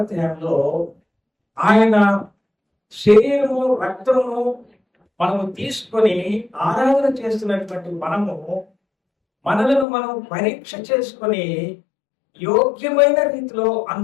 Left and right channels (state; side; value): drops out; right; at 9.9 s